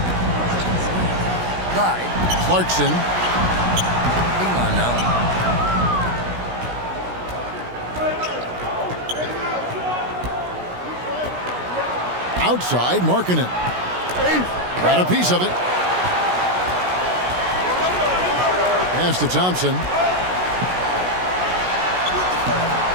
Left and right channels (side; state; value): left; late; 16 ms